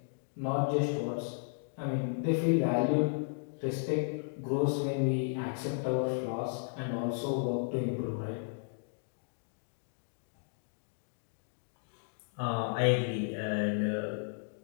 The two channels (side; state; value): right; silent; digital silence